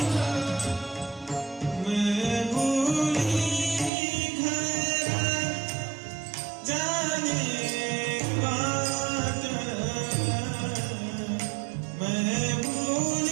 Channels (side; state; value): left; drops out; at 3.9 s